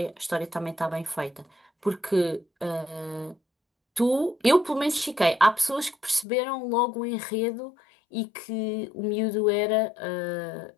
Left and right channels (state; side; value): drops out; right; at 6.2 s